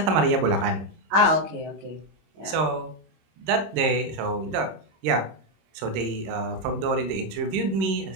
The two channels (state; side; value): late; left; 26 ms